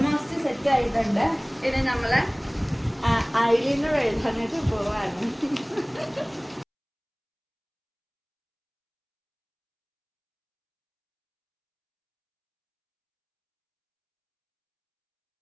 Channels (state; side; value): identical; both; correlation 1.00